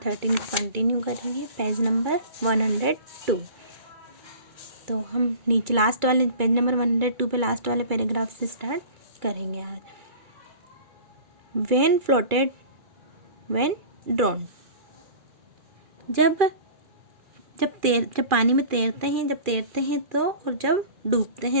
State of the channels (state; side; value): late; left; 2.4 ms